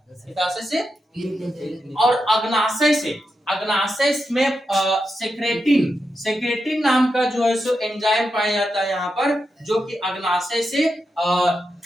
पित्ताशय से, और अग्नाशय से, अग्नाशय में सेक्रेटिन, सेक्रेटिन नाम का जो है सो एंजाइम पाया जाता है यहाँ पर, जो कि अग्नाशय से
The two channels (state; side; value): normal; both; correlation 0.87